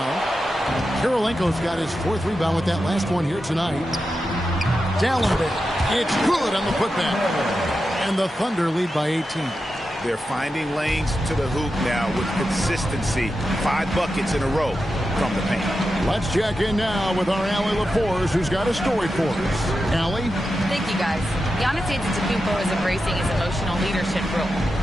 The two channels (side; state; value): both; normal; correlation 0.90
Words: Kirilenko's got his 4th rebound with that last one here tonight. Dallenberg. It's good on the putback. And the Thunder lead by 18. They're finding lanes to the hoop now with consistency. 5 buckets in a row from the paint. Let's check in now with our Allie LaForce, who's got a story for us. Allie? Thank you, guys. Giannis Antetokounmpo is embracing his emotional leadership role.